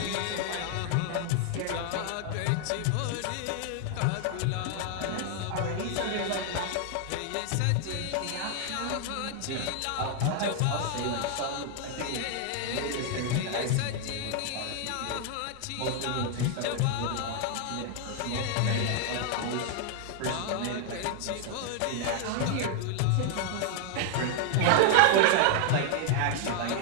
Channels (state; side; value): different; both; correlation 0.00